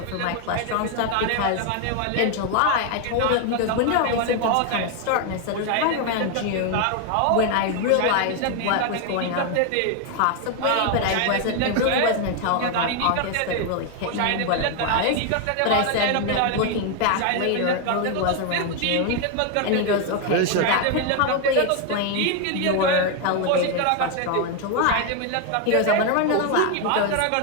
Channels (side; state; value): both; different; correlation 0.01